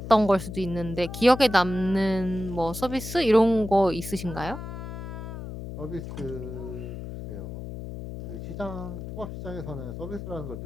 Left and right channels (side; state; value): left; noise; hum, 9 dB below the sound